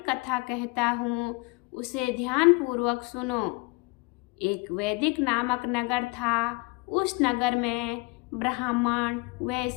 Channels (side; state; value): right; quieter; 27.2 dB